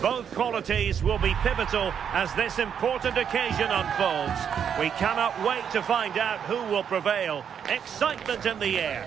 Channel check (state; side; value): quieter; left; 7.9 dB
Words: Both qualities will be pivotal as this important occasion unfolds. We cannot wait to find out who will prevail. Excitement in the